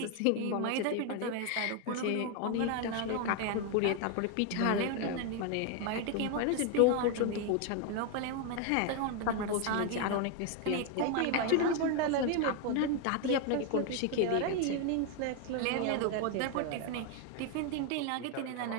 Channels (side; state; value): both; different; correlation 0.01